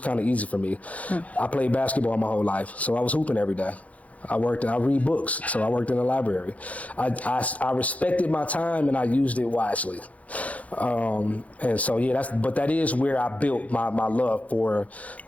kind of easy for me. I played basketball my whole life, so I was hooping every day. I read books, so I worked in the library. I respected my time and I used it wisely. And so yeah, that is where I built my love for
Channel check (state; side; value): late; right; 0.068 ms